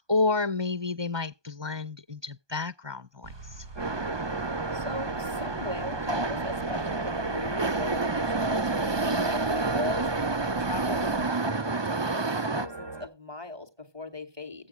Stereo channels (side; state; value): left; late; 1.2 ms